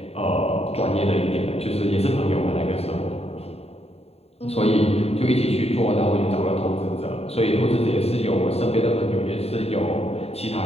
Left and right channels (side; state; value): right; late; 0.30 ms